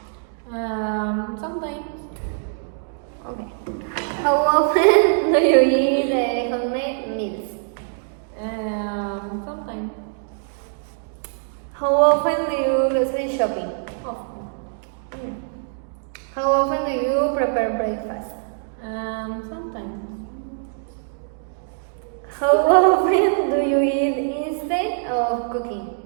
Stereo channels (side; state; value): left; silent; digital silence